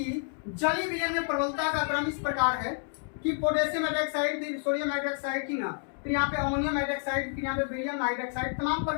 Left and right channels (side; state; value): right; silent; 58 dB below the other